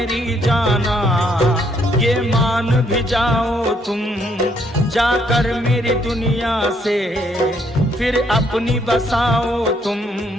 जाना, ये मान भी जाओ तुम, जाकर मेरी दुनिया से फिर अपनी बसाओ तुम।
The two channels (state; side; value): normal; both; correlation 0.70